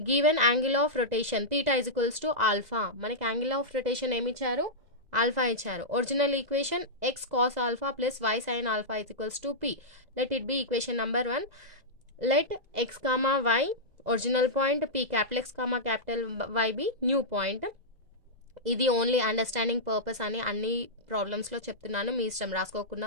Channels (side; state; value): left; late; 2.0 ms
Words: Given angle of rotation theta is equals to alpha. మనకి యాంగిల్ ఆఫ్ రొటేషన్ ఏమి ఇచ్చారు? ఆల్ఫా ఇచ్చారు. Original equation x cos alpha plus y sign alpha is equals to p. Let it be equation number 1. Let x comma y original point, p capital x comma capital y be new point. ఇది only understanding purpose అని అన్ని ప్రాబ్లమ్స్లో చెప్తున్నాను, మీ ఇష్టం,